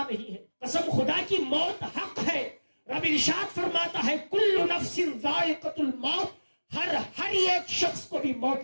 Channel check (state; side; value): inverted; both; correlation -1.00